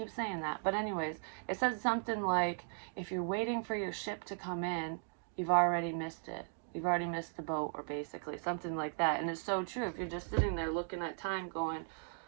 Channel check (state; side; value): silent; left; digital silence